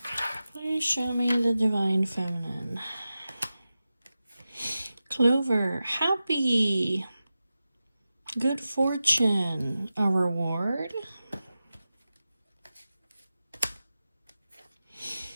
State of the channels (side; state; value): both; inverted; correlation -0.94